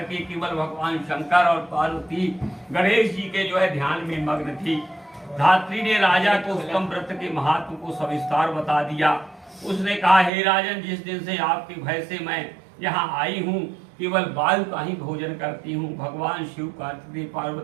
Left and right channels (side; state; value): left; drops out; at 10.3 s